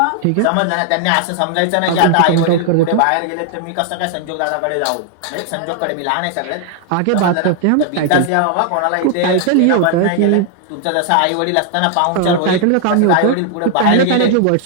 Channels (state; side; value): different; both; correlation 0.00